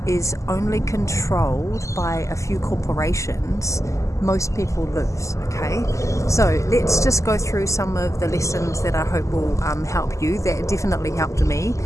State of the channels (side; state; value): right; late; 0.15 ms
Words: is only controlled by a few corporations, most people lose. Okay, so let's just go through some of the lessons that I hope will help you. That definitely helped me.